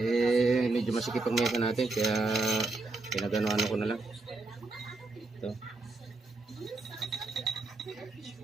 Medyo masikip ang mesa natin kaya pinagano ko na lang. Ito.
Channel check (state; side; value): quieter; left; 3.4 dB